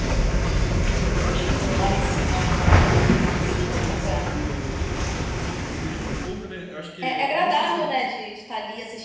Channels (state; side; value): identical; both; correlation 1.00